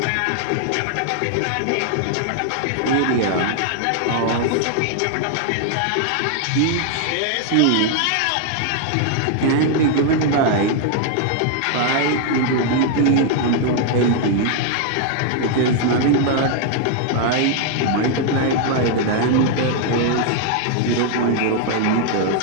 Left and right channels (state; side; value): different; both; correlation 0.00